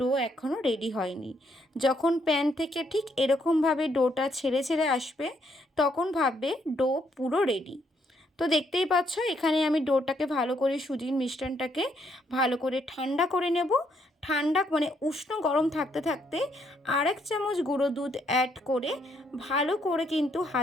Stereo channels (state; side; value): normal; both; correlation 0.73